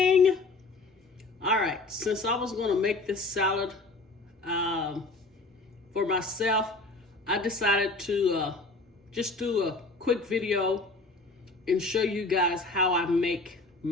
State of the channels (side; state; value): right; quieter; 3.3 dB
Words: All right, since I was going to make this salad for myself, I decided to just do a quick video and show you guys how I make